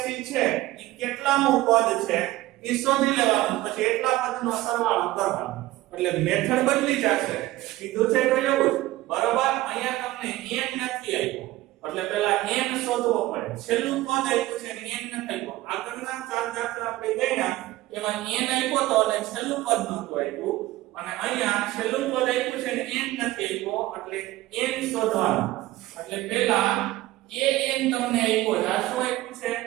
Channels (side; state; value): left; quieter; 17.2 dB